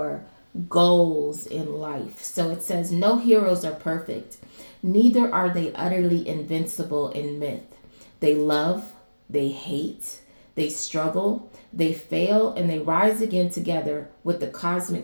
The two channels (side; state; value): both; inverted; correlation -1.00